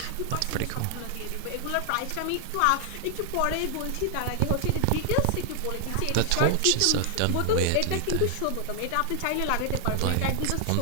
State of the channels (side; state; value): both; different; correlation 0.00